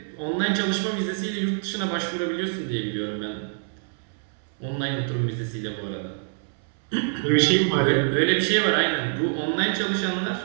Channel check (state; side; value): silent; left; 61 dB below the other